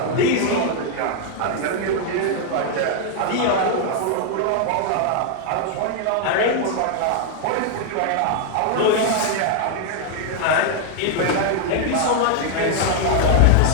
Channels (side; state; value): both; different; correlation 0.00